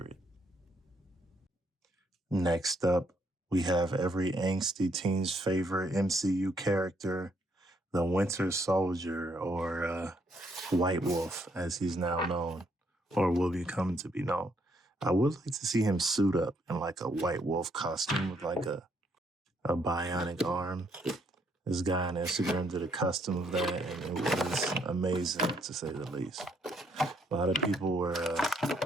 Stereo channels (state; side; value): normal; both; correlation 0.71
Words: Next up, we have every angsty teen's favorite MCU character, the Winter Soldier, or White Wolf, as he's now known, or will become to be known. I would like to see him suit up in like a White Wolf costume with like a bionic arm. This guy on Instagram did a custom of that, and it was amazing, to say the least. A lot of people were